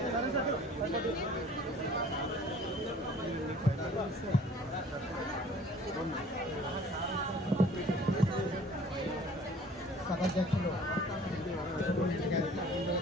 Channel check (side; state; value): both; normal; correlation 0.51